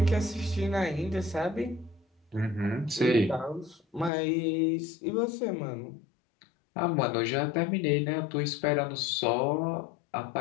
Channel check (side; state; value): right; drops out; at 4.1 s